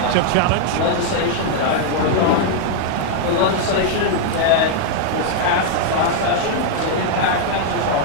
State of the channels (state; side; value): different; both; correlation -0.01